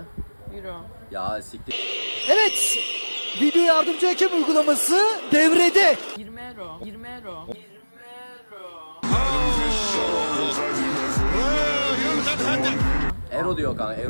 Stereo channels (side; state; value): both; inverted; correlation -1.00